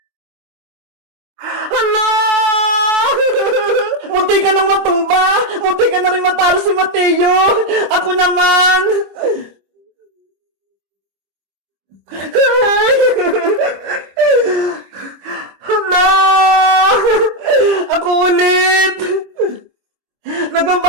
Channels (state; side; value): late; left; 25 ms